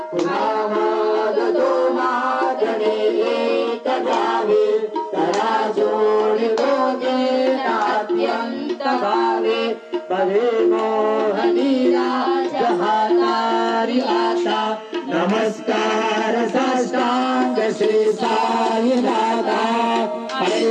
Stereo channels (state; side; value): identical; both; correlation 1.00